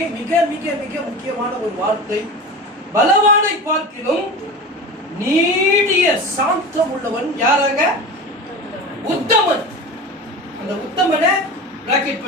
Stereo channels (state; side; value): normal; both; correlation 0.30